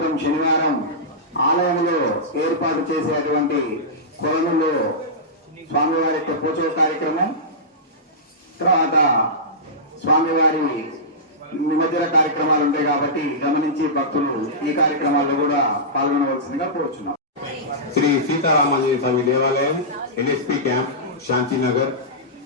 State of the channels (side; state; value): both; normal; correlation -0.15